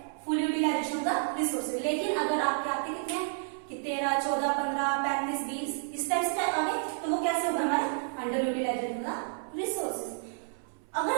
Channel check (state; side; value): silent; left; 57 dB below the other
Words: फुल यूटिलाइजेशन का रिसोर्सेज। लेकिन अगर आपके आते कितने हैं कि 13, 14, 15, 35, 20 इस टाइप से आ गए, तो वो कैसे होगा? हमारे अंडर यूटिलाइजेशन का रिसोर्सेज। अगर